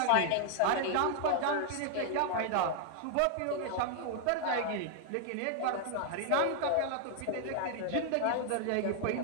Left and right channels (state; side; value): different; both; correlation 0.00